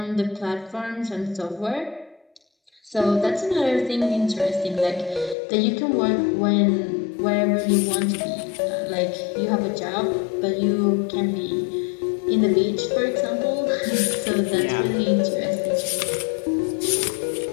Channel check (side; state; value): right; drops out; at 5.4 s